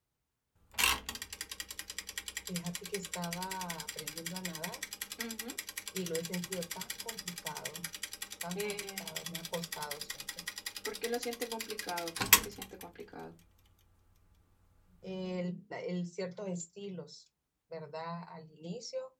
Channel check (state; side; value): identical; both; correlation 1.00